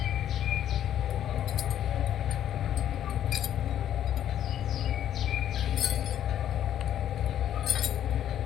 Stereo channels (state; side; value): quieter; right; 10.8 dB